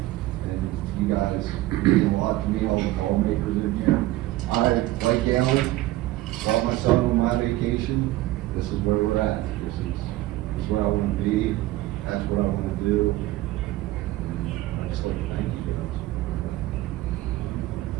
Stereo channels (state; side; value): quieter; left; 16.8 dB